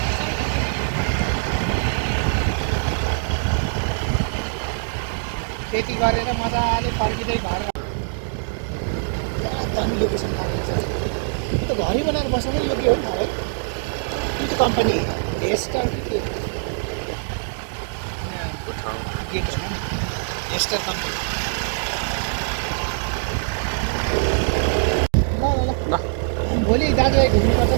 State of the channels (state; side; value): silent; left; digital silence